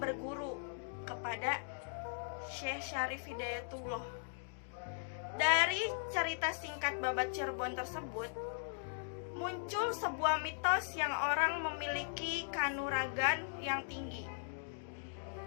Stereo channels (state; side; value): silent; right; digital silence